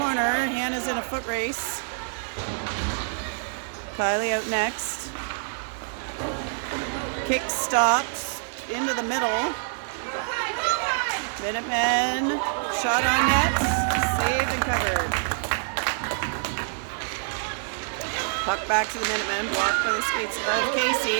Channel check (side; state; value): left; silent; digital silence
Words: Hannah's in a foot race. Kylie out next. Kick stops into the middle. Minutemen, shot on net, saved and covered. Puck back to the Minutemen, blocked by the skates of